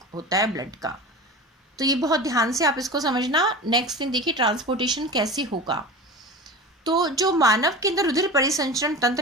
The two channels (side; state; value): both; normal; correlation 0.31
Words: होता है ब्लड का। तो ये बहुत ध्यान से आप इसको समझना। नेक्स्ट थिंग देखिए, ट्रांसपोर्टेशन कैसे होगा। तो जो मानव के अंदर रुधिर परिसंचरण